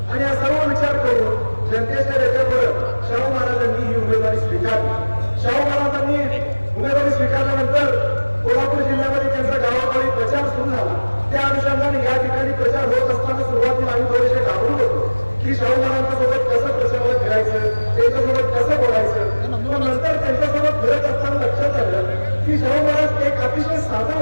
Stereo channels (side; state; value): both; inverted; correlation -1.00